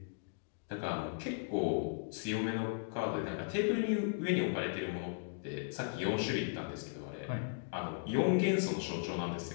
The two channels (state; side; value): silent; right; digital silence